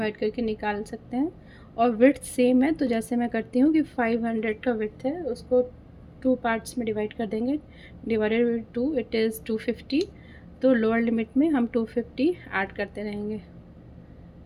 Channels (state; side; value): identical; both; correlation 1.00